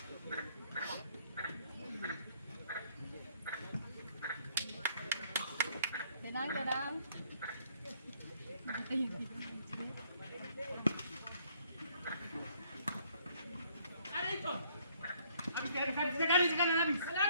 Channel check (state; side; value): inverted; both; correlation -0.65